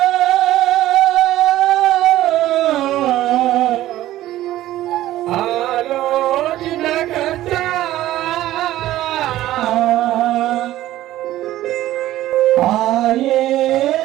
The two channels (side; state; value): left; quieter; 14.6 dB